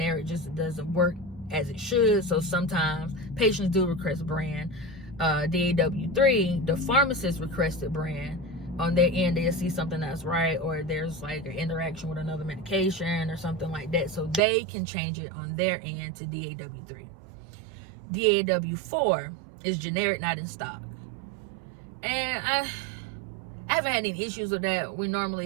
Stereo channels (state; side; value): drops out; left; at 14.4 s